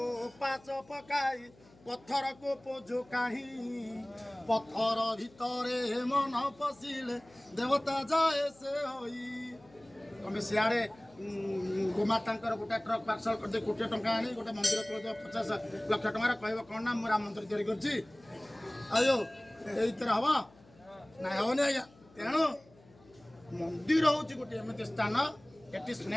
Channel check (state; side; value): noise; left; hum, 27 dB below the sound